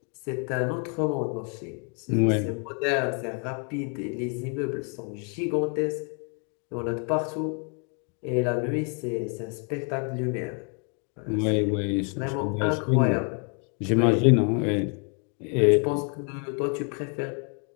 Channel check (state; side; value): quieter; right; 39.5 dB